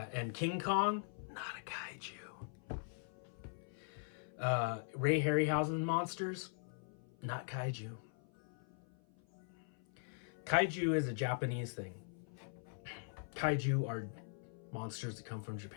and King Kong, not a kaiju. Ray Harryhausen monsters, not kaiju. Kaiju is a Japanese thing. Kaiju are monsters that come from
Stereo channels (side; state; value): right; silent; 50 dB below the other